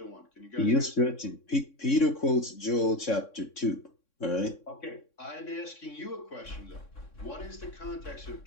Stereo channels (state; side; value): late; right; 3.6 ms